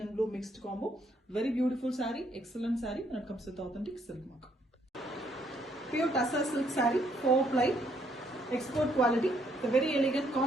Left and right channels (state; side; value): normal; both; correlation 0.70